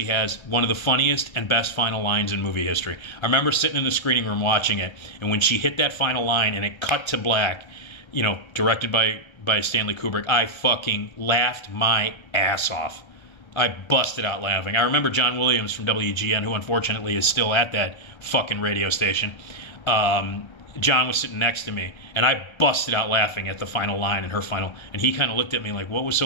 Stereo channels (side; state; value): right; late; 1.3 ms